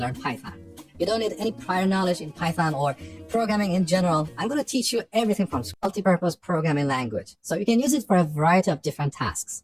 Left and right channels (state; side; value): identical; both; correlation 1.00